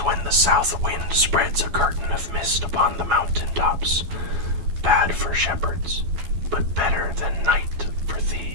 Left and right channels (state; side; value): late; left; 12 ms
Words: the south wind spreads a curtain of mist upon the mountain tops, bad for shepherds, but better than night for